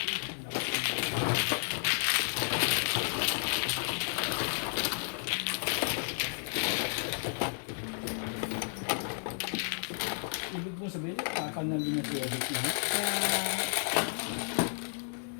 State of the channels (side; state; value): right; silent; digital silence